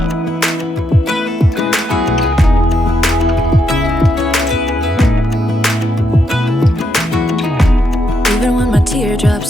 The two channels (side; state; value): both; normal; correlation 0.79